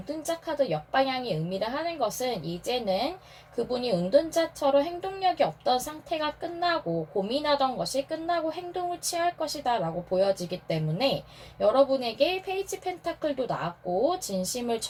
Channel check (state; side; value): identical; both; correlation 1.00